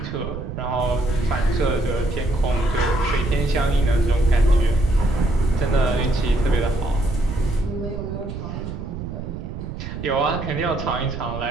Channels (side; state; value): right; noise; rumble, 8 dB below the sound